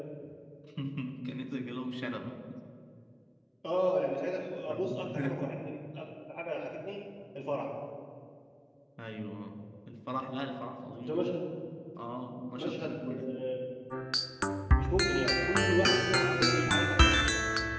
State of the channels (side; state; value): both; identical; correlation 1.00